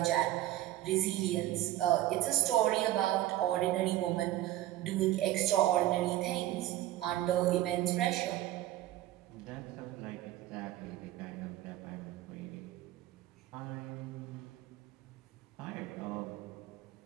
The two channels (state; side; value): quieter; left; 14.4 dB